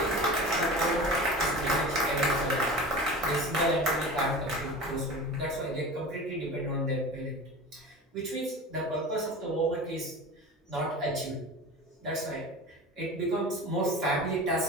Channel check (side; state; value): both; normal; correlation 0.34